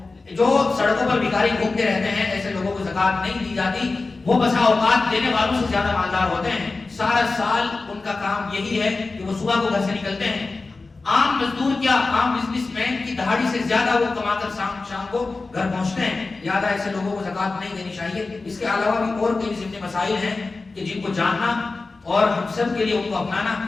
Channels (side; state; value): right; quieter; 3.7 dB